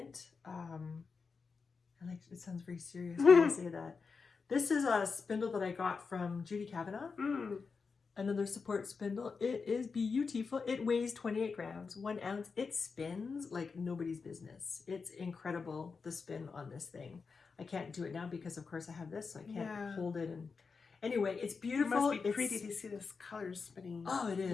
It sounds very serious when I say that. This is a spindle that I got from Judy Kavanagh. Another support spindle. It is beautiful. It weighs 28 grams, 1 ounce. It spins like nobody's business. It's incredible, the spin on this thing. I can't do it now because, of course, I have this, so I can't hold it. And anyway, it's beautiful. It must be pretty to see this color spinning. Oh, it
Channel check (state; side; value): quieter; right; 5.0 dB